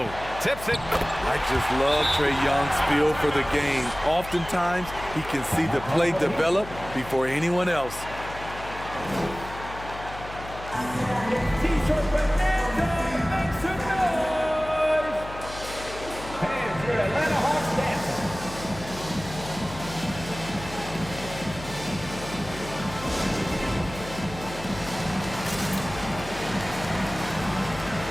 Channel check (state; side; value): noise; left; hum, 13 dB below the sound